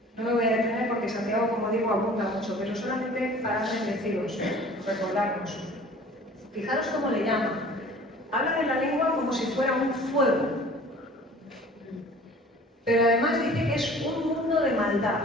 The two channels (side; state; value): both; normal; correlation 0.47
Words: No me voy a detener porque Santiago, como digo, abunda mucho, pero solamente para deciros, recordarnos. Fijaros cómo le llama. Habla de la lengua como si fuera un fuego. Pero además dice que es un mundo de maldad.